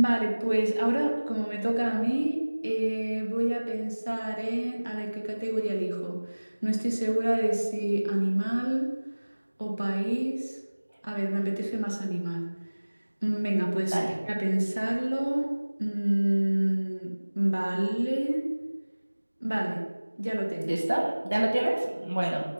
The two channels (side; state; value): both; inverted; correlation -1.00